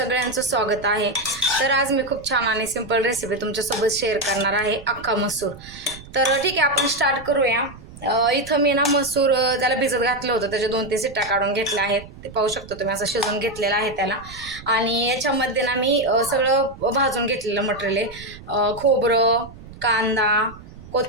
स्वागत आहे। तर आज मी खूप छान आणि सिंपल रेसिपी तुमच्यासोबत शेअर करणार आहे, अख्खा मसूर। तर ठीक आहे, आपण स्टार्ट करूया। इथं मी ना मसूर त्याला भिजत घातलं होतं, त्याच्या 2-3 शिट्ट्या काढून घेतल्या आहेत। ते पाहू शकतो तुम्ही, असं शिजवून घेतलेलं आहे त्याला। आणि याच्यामध्ये ना मी सगळं भाजून घेतलेलं मटेरियल आहे। खोबरं, कांदा,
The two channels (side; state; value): right; noise; rumble, 17 dB below the sound